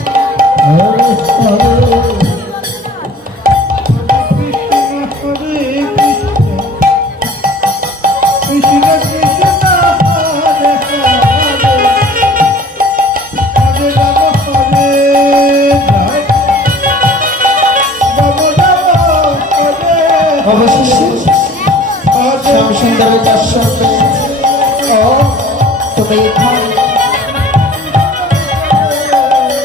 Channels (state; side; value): normal; both; correlation 0.48